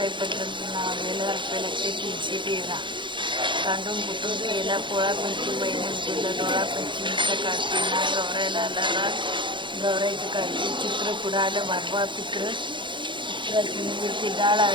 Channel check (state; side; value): late; left; 0.23 ms